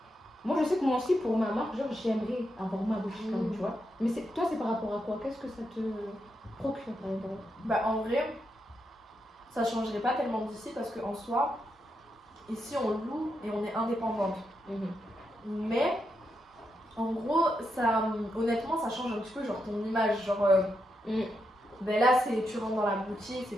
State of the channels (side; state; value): both; normal; correlation 0.83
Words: Moi je sais que moi aussi pour ma marque, genre j'aimerais avoir ma boutique quand même, tu vois. Mais toi c'est par rapport à quoi? Qu'est-ce que ça te procure par exemple? Bah, en vrai, ça changerait pas tellement d'ici parce qu'en soi, ici on loue et on est indépendante. Mais en gros, ça, honnêtement, ça change un petit peu genre ton image. Genre, ben là, tu rentres dans la boutique, c'est